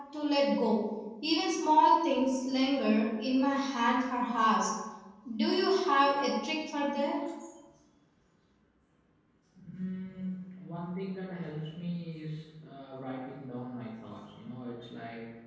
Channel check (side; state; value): both; identical; correlation 1.00